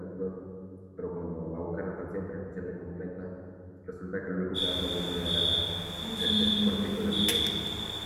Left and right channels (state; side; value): identical; both; correlation 1.00